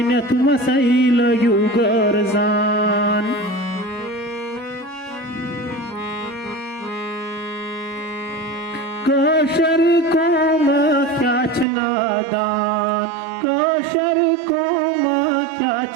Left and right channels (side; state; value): left; drops out; at 11.7 s